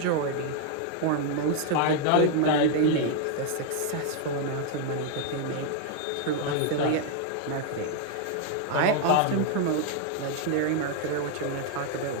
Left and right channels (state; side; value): different; both; correlation 0.00